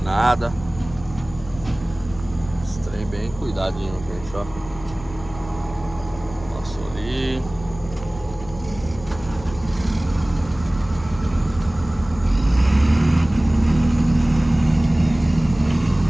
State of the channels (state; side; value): noise; left; hum, 16 dB below the sound